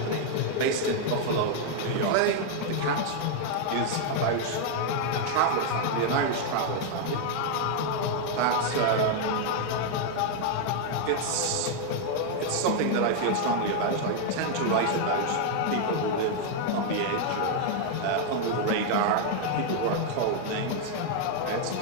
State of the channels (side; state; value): both; different; correlation 0.00